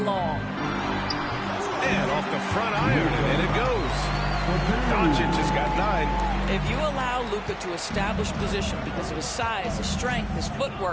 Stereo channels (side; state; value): both; identical; correlation 1.00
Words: long. And off the front iron, and in it goes. Doncic has got 9. If you allow Luka to establish position because of his size, his strength, his